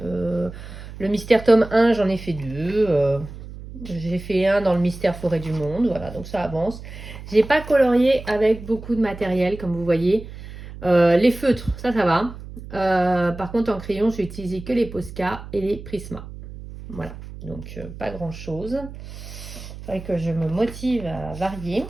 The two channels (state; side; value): noise; right; hum, 13 dB below the sound